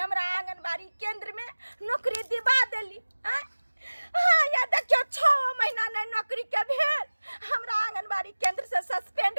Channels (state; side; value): inverted; both; correlation -1.00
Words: आंगनबाड़ी केंद्र में नौकरी दिवा देली हैं? हाँ या देखियो 6 महीना नहीं नौकरी के भेल, हमरा आंगनबाड़ी केंद्र से सस्पेंड